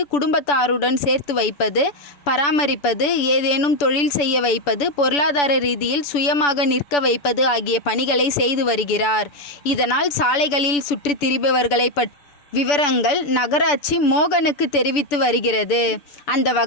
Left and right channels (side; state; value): right; late; 6.9 ms